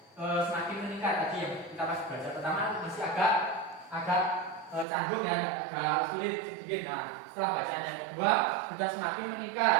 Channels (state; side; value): drops out; left; at 4.9 s